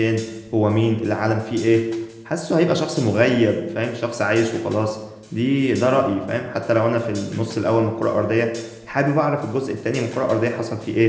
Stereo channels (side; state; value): both; identical; correlation 1.00